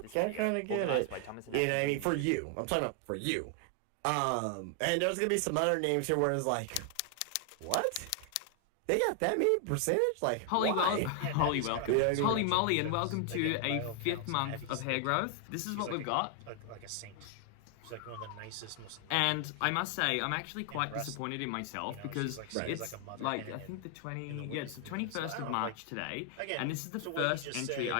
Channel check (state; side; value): different; both; correlation 0.00